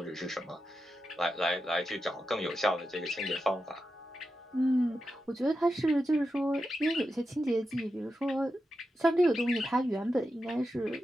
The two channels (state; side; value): normal; both; correlation 0.89